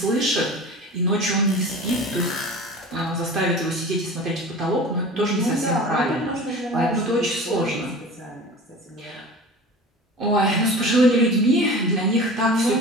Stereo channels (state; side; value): normal; both; correlation 0.37